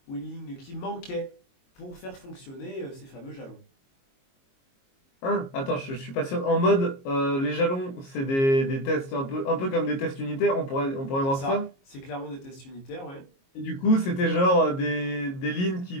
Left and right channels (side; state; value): right; late; 22 ms